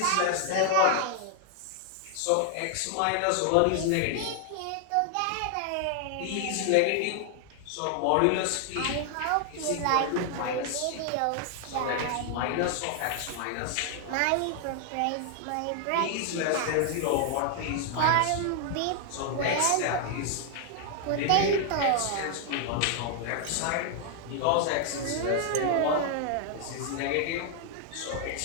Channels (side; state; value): both; different; correlation 0.00